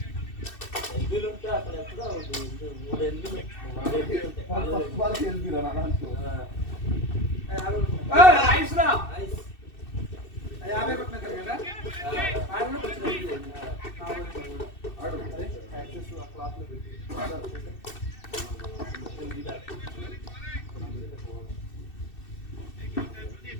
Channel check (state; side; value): late; right; 2.6 ms